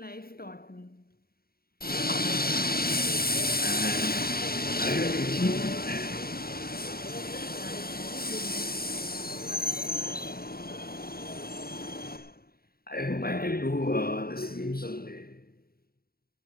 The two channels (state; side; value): late; right; 0.44 ms